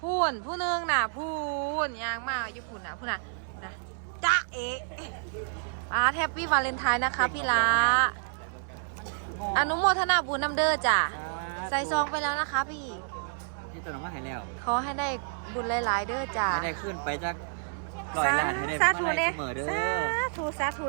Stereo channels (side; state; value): left; silent; digital silence